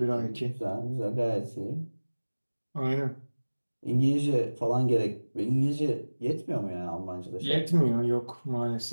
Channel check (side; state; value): both; inverted; correlation -1.00